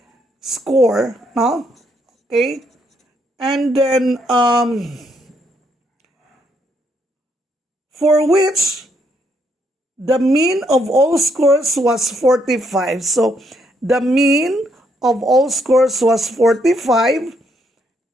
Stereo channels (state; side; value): normal; both; correlation 0.74